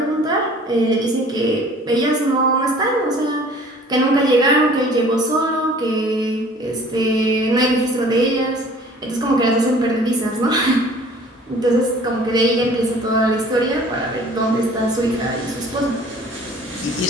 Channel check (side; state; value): both; normal; correlation 0.50